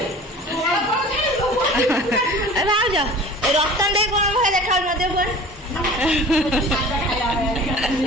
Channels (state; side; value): normal; both; correlation 0.41